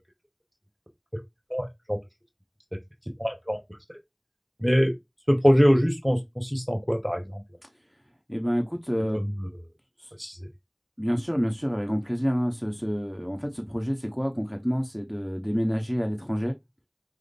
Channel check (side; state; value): both; identical; correlation 1.00